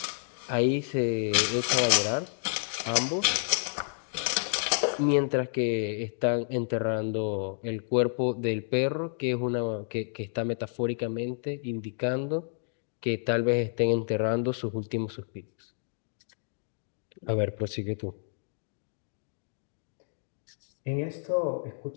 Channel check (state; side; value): silent; right; digital silence